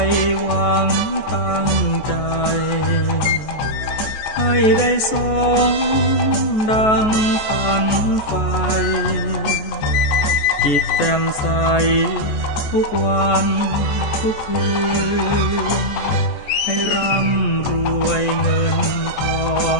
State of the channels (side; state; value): right; late; 14 ms